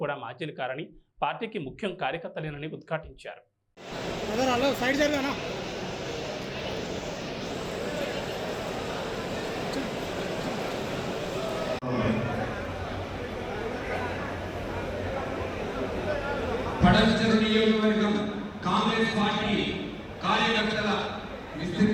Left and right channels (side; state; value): both; identical; correlation 1.00